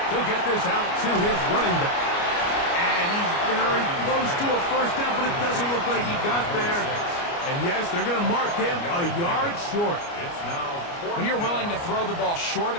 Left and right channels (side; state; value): right; late; 29 ms